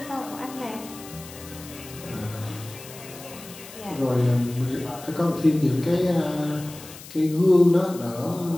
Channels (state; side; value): noise; left; hiss, 16 dB below the sound